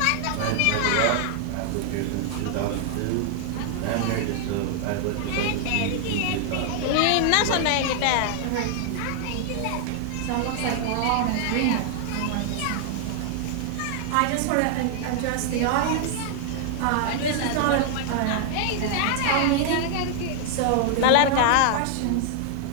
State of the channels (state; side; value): different; both; correlation 0.00